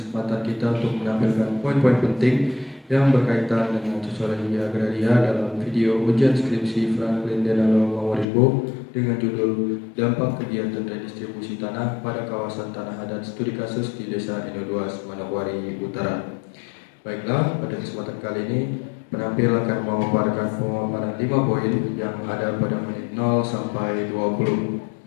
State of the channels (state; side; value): drops out; right; at 8.2 s